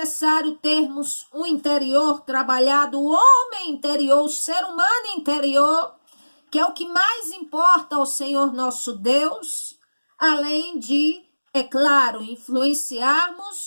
termos um interior trabalhado, o homem interior, o ser humano interior, que é o que mais importa ao Senhor nosso Deus, além de, é claro,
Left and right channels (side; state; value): both; inverted; correlation -1.00